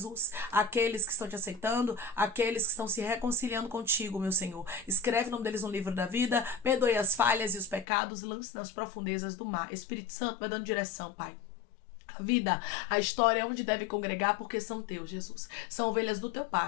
aqueles que estão te aceitando, aqueles que estão se reconciliando contigo, meu Senhor. Escreve o nome deles no livro da vida, perdoe as falhas e os pecados, lance nas profundezas do mar. Espírito Santo, vai dando direção, Pai. A vida, a história é onde deve congregar, porque são teus, Jesus. São ovelhas do teu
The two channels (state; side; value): drops out; right; at 7.9 s